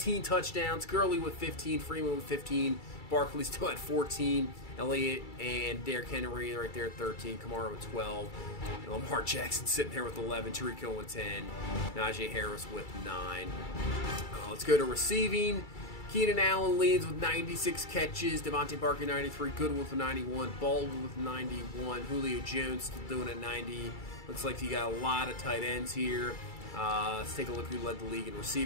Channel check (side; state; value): right; late; 2.3 ms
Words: touchdowns. Gurley with 15. Freeman with 15. Barkley still at 14. Elliott and Derrick Henry right there at 13. Kamara with 12. And Lamar Jackson sitting there with 11. Tariq Hill with 10. Najee Harris with 9. Let's go to receiving. Keenan Allen leads with 96 catches. Devontae Parker 93. Goodwin with 91. Baldwin with 91. Julio Jones still doing at 90. Looks like you got a lot of tight ends here. Let's take a look who led the league in